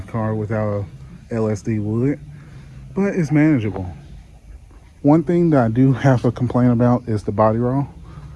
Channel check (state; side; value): identical; both; correlation 1.00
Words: car without a LSD would, but it's manageable. One thing that I do have a complaint about is the body roll.